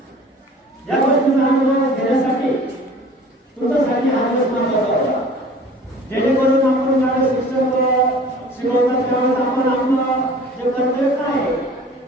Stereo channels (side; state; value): both; normal; correlation 0.45